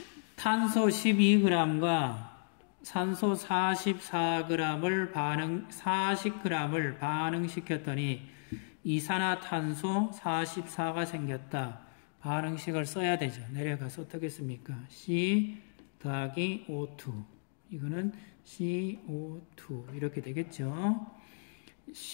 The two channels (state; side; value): silent; right; digital silence